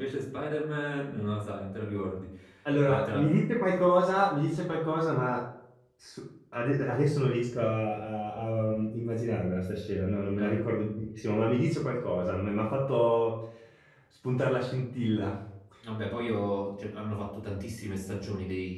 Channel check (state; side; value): identical; both; correlation 1.00